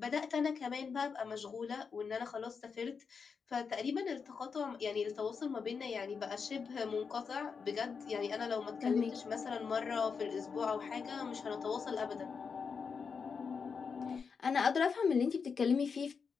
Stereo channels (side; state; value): right; quieter; 5.7 dB